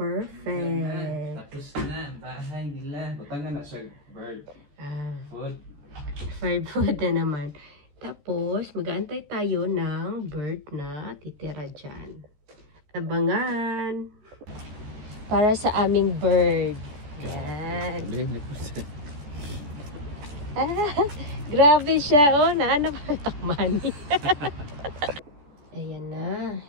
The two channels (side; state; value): left; late; 14 ms